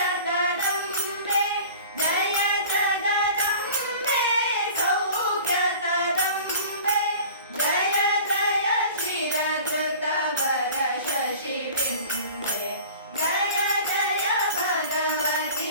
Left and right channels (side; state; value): both; inverted; correlation -0.42